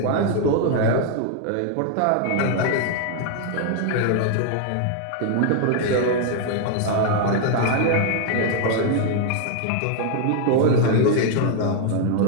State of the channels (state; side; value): different; both; correlation 0.00